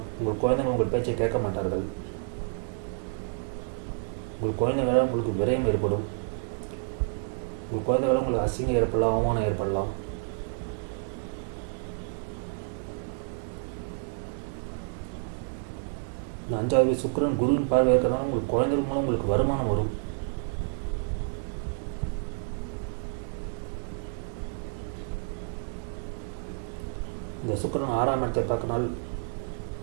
உங்கள் குழந்தைங்க உங்கள் பேச்சை கேட்க மாட்டார்கள். உங்கள் குழந்தைங்களால் உங்களுக்கு விரயம் ஏற்படும். உங்கள் குழந்தைகளால் உங்களுக்கு அசிங்கம் ஏற்படலாம், அவமானம் ஏற்படலாம். இந்த 5வது சுக்கிரன் குருவின் பார்வை இருக்கிறதுனால உங்களுக்கு குழந்தைகள் மூலம் உங்களுக்கு வருமானம் வரும். இந்த சுக்கிரன் 6ஆம் இடத்தை பார்க்கனால்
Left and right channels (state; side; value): silent; left; digital silence